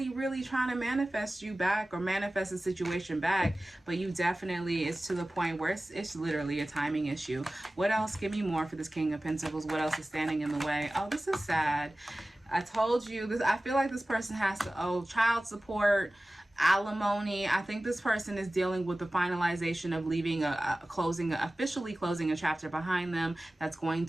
really trying to manifest you back or manifest a situation back. But you definitely, it's to the point where it's literally a timing issue. What else? Give me more for this King of Pentacles. What else is standing in the way? Oh, this is sad. I told you this. I feel like this person has to owe child support, alimony. I think this person is dealing with the finalization of leaving officially closing a chapter behind them that's going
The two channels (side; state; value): both; normal; correlation 0.97